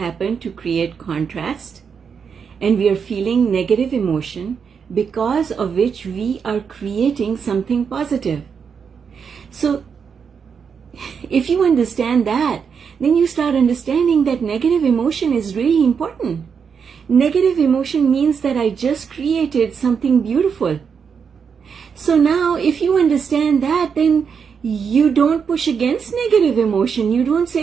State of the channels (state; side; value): quieter; left; 6.4 dB